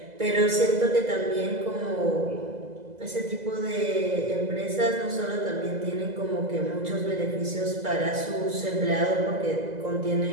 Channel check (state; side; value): late; left; 2.0 ms